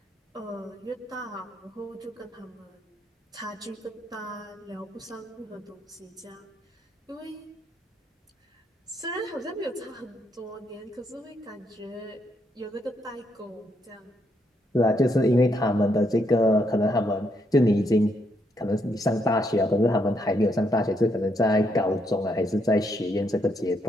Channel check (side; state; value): both; normal; correlation 0.76